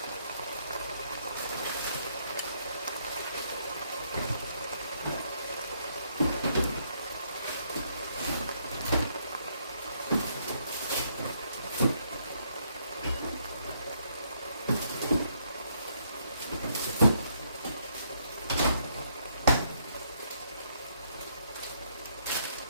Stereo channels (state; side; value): inverted; both; correlation -0.72